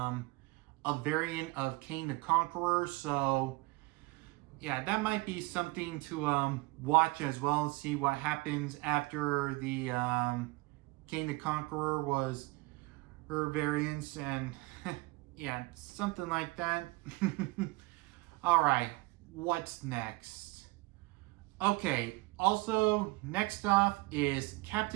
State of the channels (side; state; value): left; quieter; 23.2 dB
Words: a variant of Kang the Conqueror. So yeah, that might be something to watch as well, and see what happens after the Kang the Conqueror was her variants, and yeah, something like that. Alright, what's next? Okay, also next off is